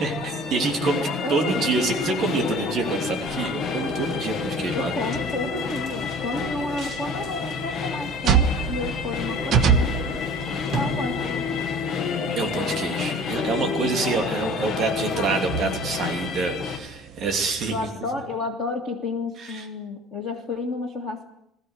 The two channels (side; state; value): both; normal; correlation 0.45